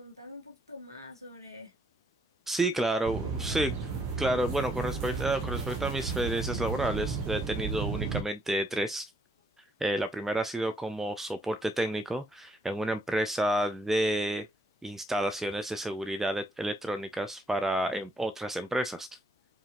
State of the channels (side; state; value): both; normal; correlation 0.71